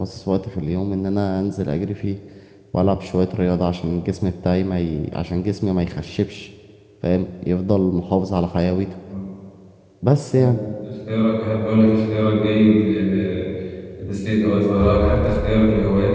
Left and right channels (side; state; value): both; identical; correlation 1.00